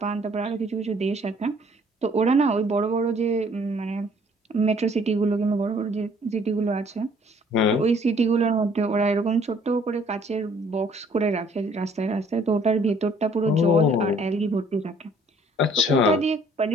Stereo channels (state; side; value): normal; both; correlation 0.60